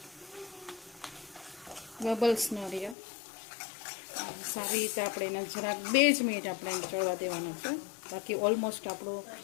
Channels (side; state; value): right; drops out; at 3.0 s